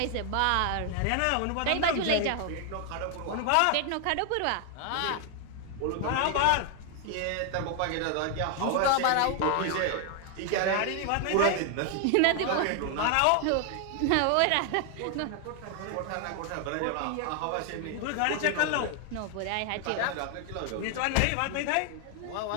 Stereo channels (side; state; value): both; different; correlation 0.00